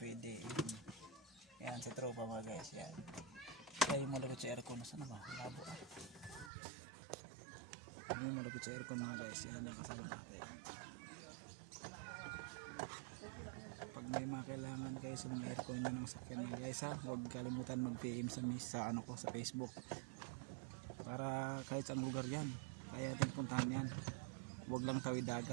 Yan si tropa mga guys, yan. Kaya yung malapit sa aircon, nasa na ba? Labo ah. Ano yung malapit sa aircon mga guys, yan nakasama natin. Pag may mga kailangan kayo sa mga aircon nyo ng sakyan mga guys ha, huwag kalimutan mag-PM sa ano ko sa Facebook para kahit saang lugar yan kaya ating puntahan yan. Huwag lang tawid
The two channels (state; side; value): drops out; left; at 6.5 s